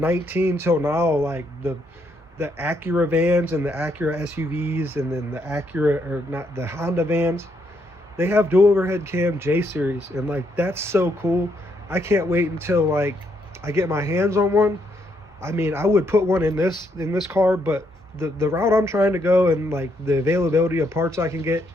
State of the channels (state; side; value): normal; both; correlation 0.75